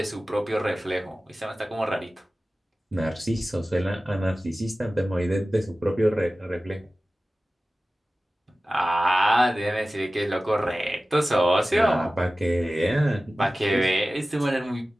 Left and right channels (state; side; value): normal; both; correlation 0.96